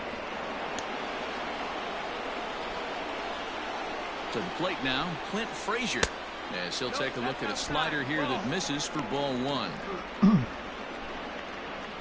To the plate now, Clint Frazier. As he'll take a look at a slider here that misses for ball 1.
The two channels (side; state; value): both; identical; correlation 1.00